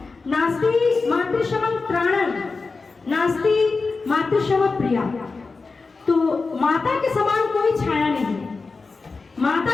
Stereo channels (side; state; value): right; quieter; 4.2 dB